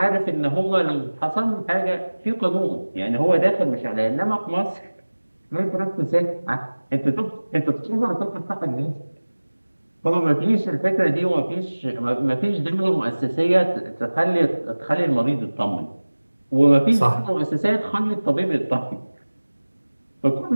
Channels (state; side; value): inverted; both; correlation -1.00